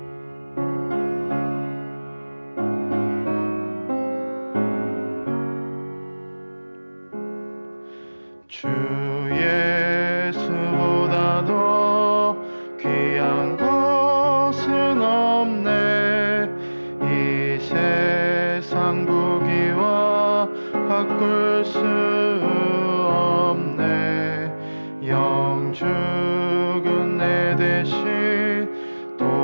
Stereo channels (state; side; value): inverted; both; correlation -1.00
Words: 주 예수보다 더 귀한 것은 없네. 이 세상 부귀와 바꿀 수 없네. 영 죽은 내 대신